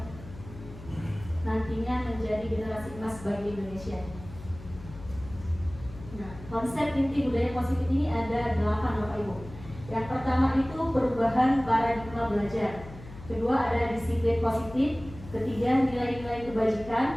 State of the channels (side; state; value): left; noise; hum, 16 dB below the sound